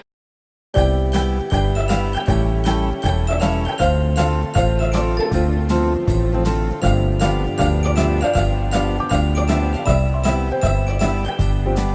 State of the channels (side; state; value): both; identical; correlation 1.00